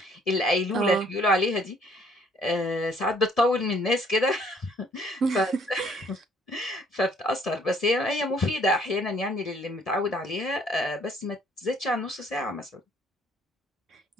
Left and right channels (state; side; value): normal; both; correlation 0.62